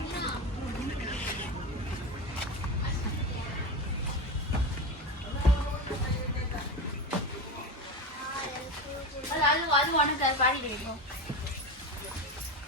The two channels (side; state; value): both; normal; correlation 0.21